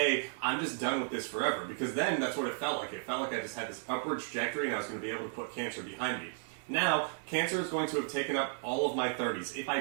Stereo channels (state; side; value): silent; left; 55 dB below the other